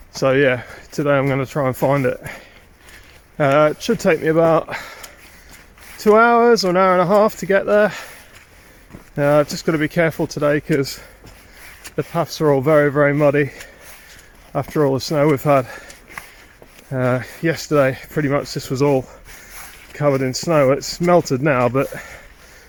So yeah, today I'm going to try and find it. It should take me about 2 hours or an hour and a half to get there. I've just got to be careful today because the paths are all very muddy after all the snow we've had. Yesterday pretty much this was all covered in snow. It's melted now, but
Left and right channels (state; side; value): identical; both; correlation 1.00